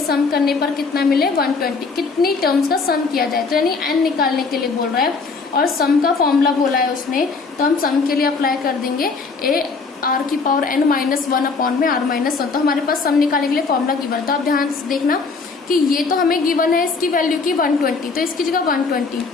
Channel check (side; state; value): right; quieter; 4.5 dB